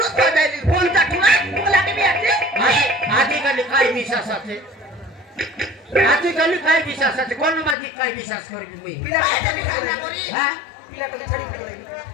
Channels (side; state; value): right; drops out; at 7.8 s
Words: তো যাইলি ফোন চাটুরা বলা কি বিয়াছে আজকালি কাই বিশ্বাস আছে আজকালি কাই বিশ্বাস আছে কোন মাঝি কাই বিশ্বাস করবি মুই বিনা পয়সা বিচার না করি হ্যাঁ পিলাটাকে ছাড়ি ফেলে দিবি